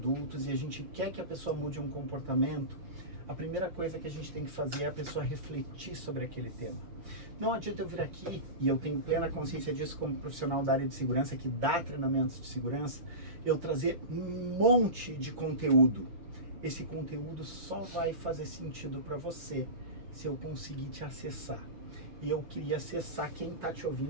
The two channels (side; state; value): left; late; 6.4 ms